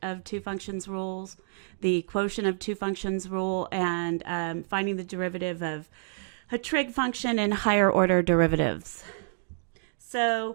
of two functions rules, the quotient of two functions rule, and finding the derivative of a trig function in higher order derivatives.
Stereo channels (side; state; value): left; silent; digital silence